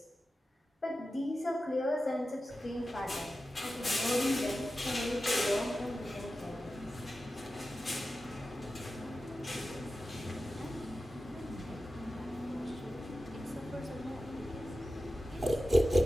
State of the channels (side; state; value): both; normal; correlation 0.93